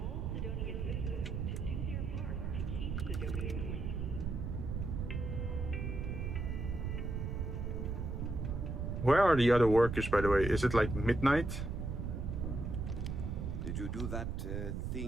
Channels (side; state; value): right; noise; rumble, 3 dB below the sound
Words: Where are the other workers, by the way? Is it like midnight? Did you do that